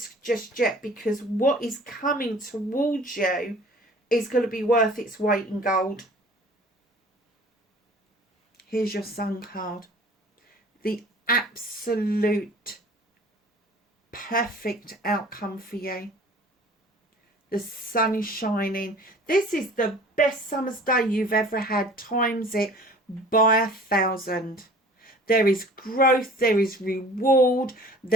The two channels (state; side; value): normal; both; correlation 0.48